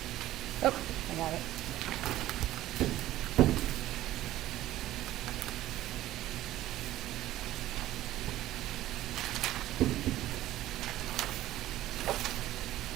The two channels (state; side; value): quieter; left; 14.7 dB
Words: Oh, I got it.